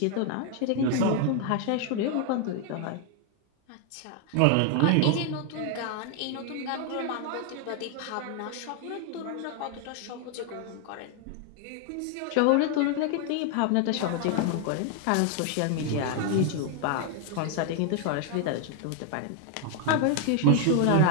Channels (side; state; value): both; different; correlation 0.00